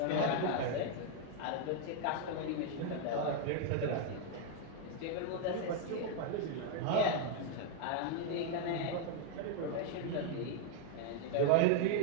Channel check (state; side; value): different; both; correlation 0.01